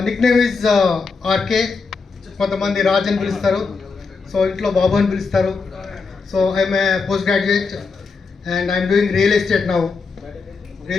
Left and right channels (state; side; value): quieter; right; 4.7 dB